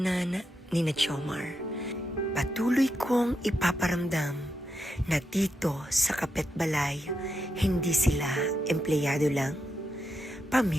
ni na Jomar. Patuloy kong ipaparamdam na dito sa Kapitbalay, hindi sila empleyado lang.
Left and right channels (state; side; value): normal; both; correlation 0.84